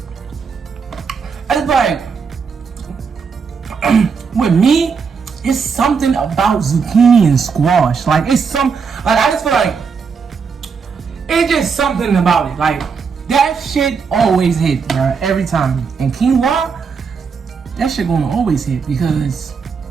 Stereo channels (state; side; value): quieter; left; 5.7 dB